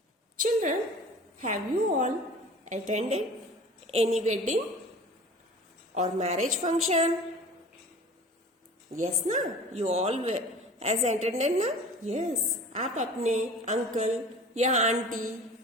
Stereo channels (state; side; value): normal; both; correlation 0.42